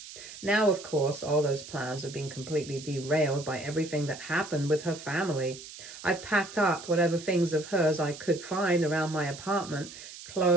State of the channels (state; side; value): noise; right; hiss, 14 dB below the sound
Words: Now, of course, all those plans have been completely derailed by everything that happened with her family. I've packed up whatever things of hers I could find around my apartment,